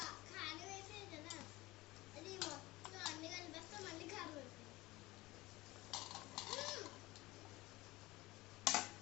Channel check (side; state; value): right; quieter; 20.0 dB